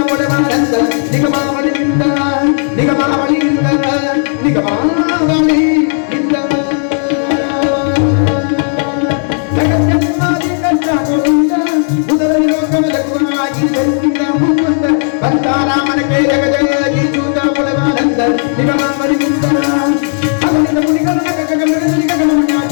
ಪಡವಾನಂದ ನಿಗಮಾವಳಿಯಿಂದ ನಿಗಮಾವಳಿಯಿಂದ ನಿಗಮಾವಳಿಯಿಂದ ಜಗಜ್ಜನ್ಮಾದಿ ಕಷ್ಟಗಳಿಂದ ಮೊದಲ ಲೋಕದ ಗುರುವಾಗಿ ಜನ್ಮಿದ ಮುಕುಂದ ಕಂತಾರಾಮನಕ್ಕೆ ಜಗಜಗಿಸುತ್ತ ಪಡವಾನಂದ ನಿಗಮಾವಳಿಯಿಂದ ಅವನಿಂದ ಮುನಿಗಳ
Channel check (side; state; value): right; silent; digital silence